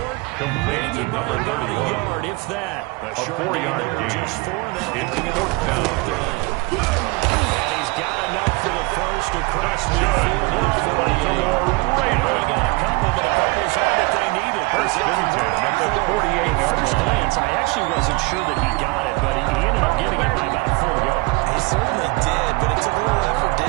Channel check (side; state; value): left; quieter; 25.4 dB